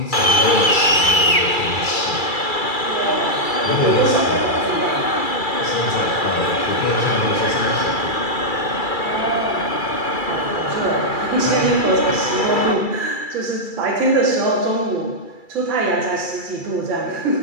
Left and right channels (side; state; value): right; late; 2.3 ms